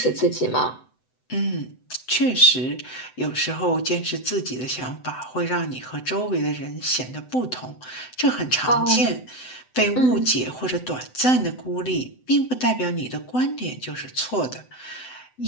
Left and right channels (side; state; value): right; late; 7.9 ms